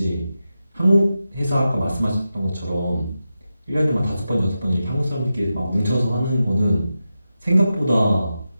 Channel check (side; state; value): both; inverted; correlation -0.91